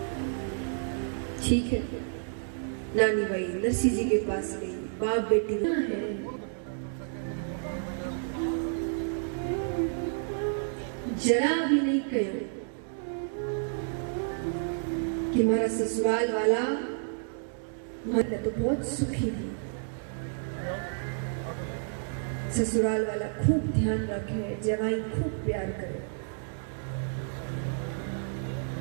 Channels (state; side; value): silent; left; digital silence